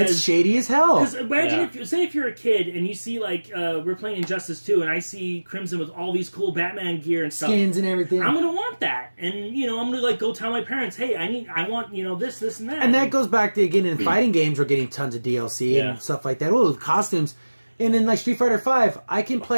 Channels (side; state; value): both; inverted; correlation -1.00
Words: It's shady as hell. Because imagine if you're a kid and you see, like, we're playing Injustice 2, and I see Crimson with all these cool Batman gear and stuff. Skins and everything. I'm going to want that. And, you know, I'm going to, like, go tell my parents, hey, I want, you know, this, and that. And that goes back to, again, in fighting games, we're getting tons of DLC and stuff like that. Oh, costumes. And in, like, Street Fighter V, I can